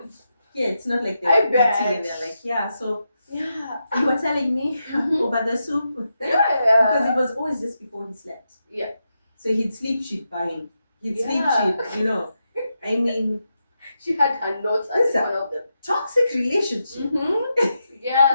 It's not like they're eating and they're like, so you were telling me over the soup. Yeah. Because it was always just before he slept. Yeah. So he'd sleep, she'd buy him. He'd sleep, she'd, I mean. She had her notes as one of the toxic relationship.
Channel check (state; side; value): inverted; both; correlation -0.86